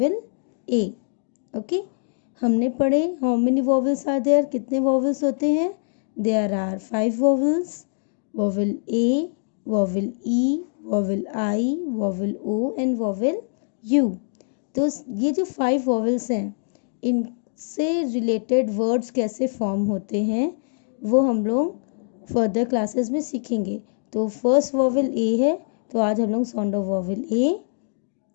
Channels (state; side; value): silent; right; digital silence